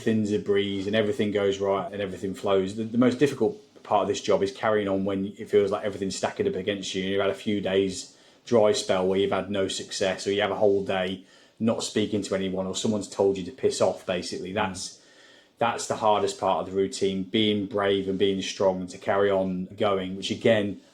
a breeze, and everything goes right, and everything flows. The most difficult part of this job is carrying on when it feels like everything's stacking up against you, and you've had a few days dry spell where you've had no success, or you have a whole day not speaking to anyone, or someone's told you to piss off. Basically, that's the hardest part of the routine, being brave and being strong and to carry on going, which again,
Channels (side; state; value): both; identical; correlation 1.00